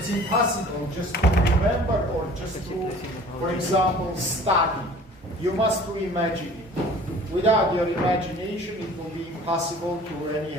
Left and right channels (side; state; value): both; normal; correlation 0.47